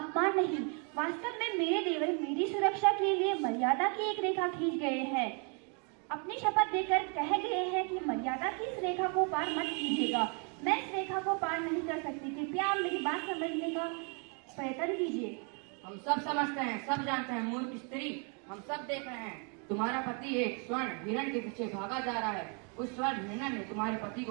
नहीं, वास्तव में मेरे देवर मेरी सुरक्षा के लिए मर्यादा की एक रेखा खींच गए हैं। अपनी शपथ देकर कह गए हैं कि मर्यादा की इस रेखा को पार मत कीजिएगा। मैं इस रेखा को पार नहीं कर सकती, कृपया आप मेरी बात समझने का प्रयत्न कीजिए। हम सब समझते हैं, सब जानते हैं मूर्ख स्त्री, हम सब देख रहे हैं। तुम्हारा पति एक स्वर्ण हिरण के पीछे भागा जा रहा है। उस स्वर्ण हिरण ने तुम्हारे पति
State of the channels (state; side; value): quieter; left; 37.1 dB